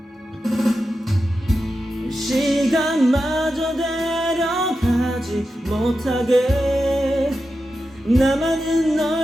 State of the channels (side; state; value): both; normal; correlation 0.90